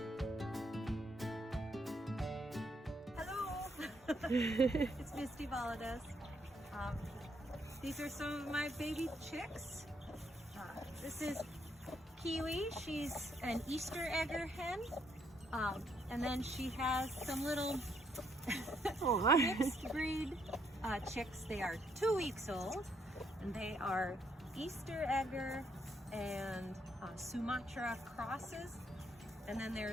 Hello, it's Misty Valadez. These are some of my baby chicks. This is Kiwi. She's an Easter egger hen. And then she has some little mixed breed chicks. They are 2 weeks old, and they are Easter egger and Sumatra crosses. And then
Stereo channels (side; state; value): both; normal; correlation 0.73